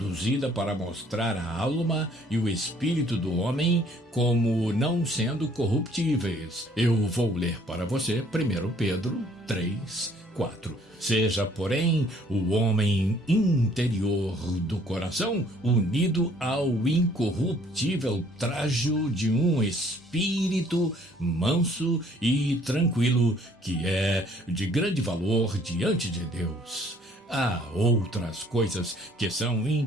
para mostrar a alma e o espírito do homem como não sendo corruptíveis. Eu vou ler para você 1 Pedro 3:4. Seja, porém, o homem interior do coração unido ao incorruptível trajo de um espírito manso e tranquilo, que é de grande valor diante de Deus. Há outras coisas que são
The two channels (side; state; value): both; normal; correlation 0.60